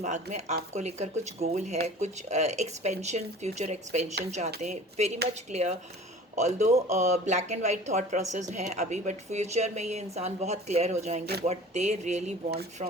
में आपको लेकर कुछ गोल है, कुछ एक्सपेंशन, फ्यूचर एक्सपेंशन चाहते हैं, very much clear. Although black and white thought process हैं अभी, बट फ्यूचर में ये इंसान बहुत क्लियर हो जाएंगे what they really want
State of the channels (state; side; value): normal; both; correlation 0.43